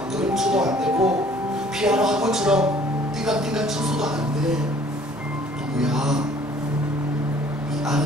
그림쳐도 안 되고 피아노 학원처럼 띵강띵강 쳐서도 안 돼. 누구야? 이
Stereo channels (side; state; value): both; normal; correlation 0.56